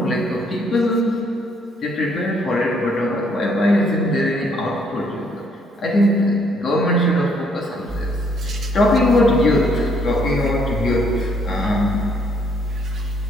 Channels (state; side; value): normal; both; correlation 0.68